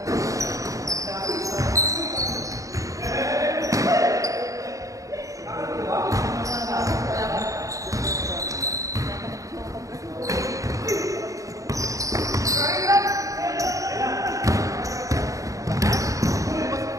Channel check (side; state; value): left; late; 0.16 ms